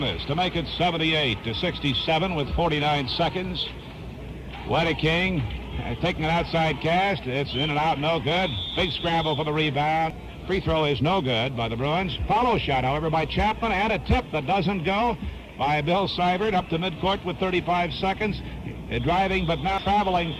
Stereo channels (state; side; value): identical; both; correlation 1.00